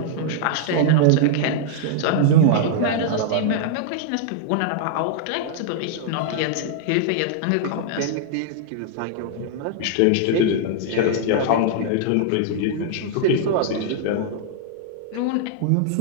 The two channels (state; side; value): different; both; correlation -0.01